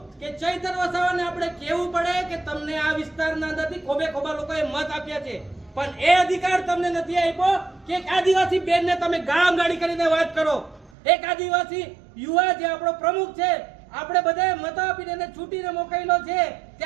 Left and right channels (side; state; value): left; drops out; at 10.9 s